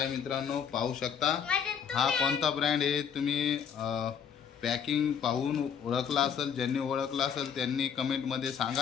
मित्रांनो पाहू शकता हा कोणता ब्रँड आहे। तुम्ही पॅकिंग पाहून ओळखला असेल, ज्यांनी ओळखला असेल त्यांनी कमेंटमध्ये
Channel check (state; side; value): quieter; right; 7.6 dB